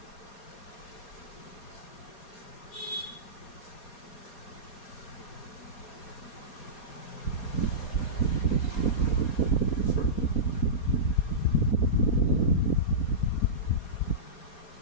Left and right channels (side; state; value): right; late; 4.2 ms